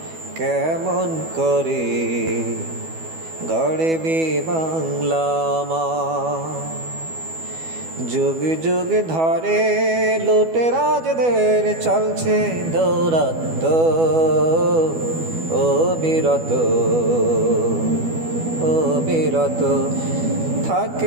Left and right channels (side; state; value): left; late; 12 ms